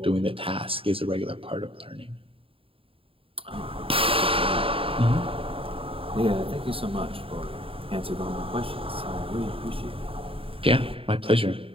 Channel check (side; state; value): left; late; 0.27 ms